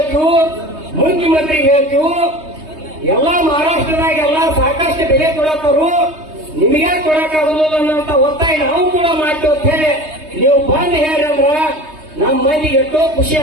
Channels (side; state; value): left; late; 3.2 ms